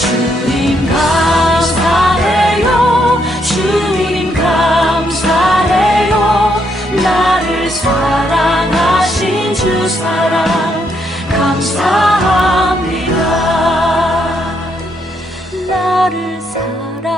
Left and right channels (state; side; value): normal; both; correlation 0.75